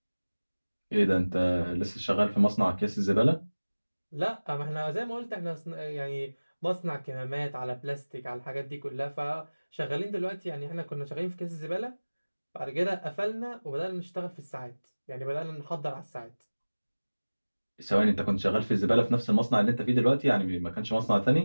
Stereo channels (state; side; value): inverted; both; correlation -1.00